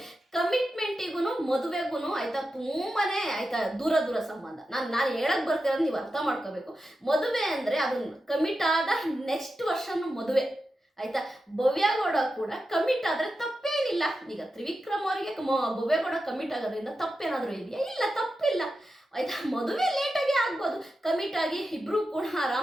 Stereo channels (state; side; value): normal; both; correlation 0.90